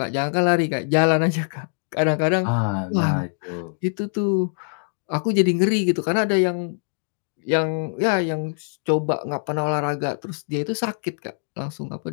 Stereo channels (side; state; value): right; silent; digital silence